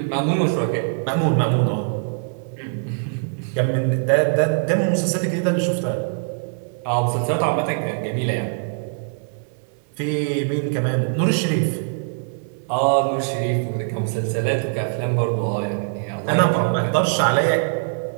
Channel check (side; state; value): left; silent; digital silence